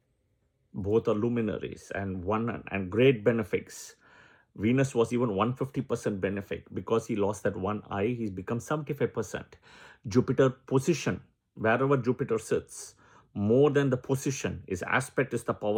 Both are luminaries and great benefics. Venus was even 150% benefic. Because he lost that one eye, he's become 75%. Jupiter position, wherever Jupiter sits, more than the position, his aspect is the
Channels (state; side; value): identical; both; correlation 1.00